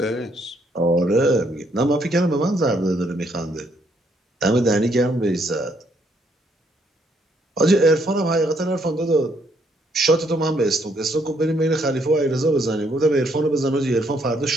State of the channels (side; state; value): both; normal; correlation 0.71